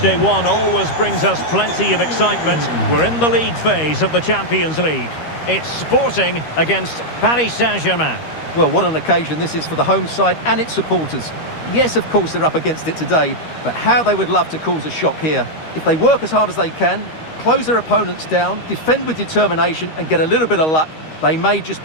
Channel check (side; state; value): right; late; 13 ms